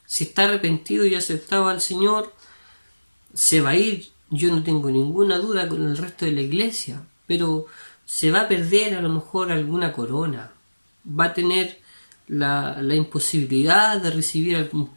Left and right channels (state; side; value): inverted; both; correlation -1.00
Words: Si está arrepentido y aceptado al Señor, se va a ir, yo no tengo ninguna duda, con el resto de la iglesia, pero se va a perder a lo mejor alguna corona, va a tener la imposibilidad de recibir algún